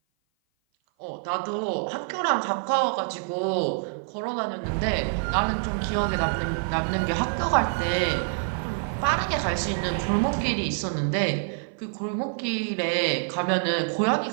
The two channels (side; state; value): left; silent; 56 dB below the other